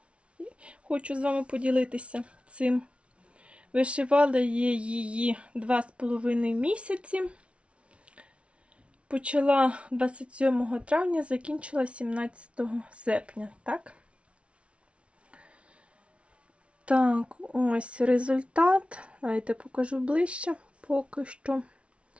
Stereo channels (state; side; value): late; left; 0.061 ms